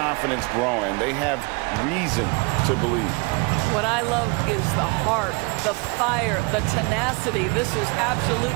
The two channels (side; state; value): left; quieter; 29.5 dB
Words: growing. They have reason to believe. What I love is the heart, the fire, the tenacity. This is